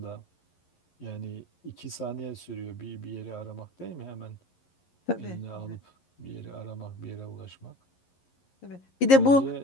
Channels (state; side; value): late; right; 11 ms